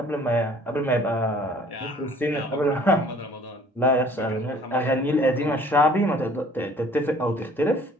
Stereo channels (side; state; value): both; normal; correlation 0.54